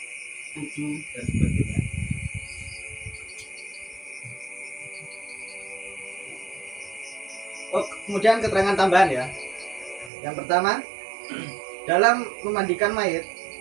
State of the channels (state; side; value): drops out; left; at 10.1 s